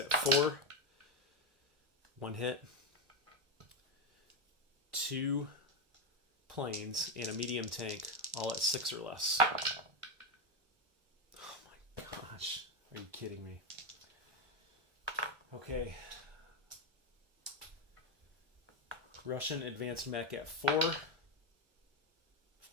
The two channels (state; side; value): late; left; 1.1 ms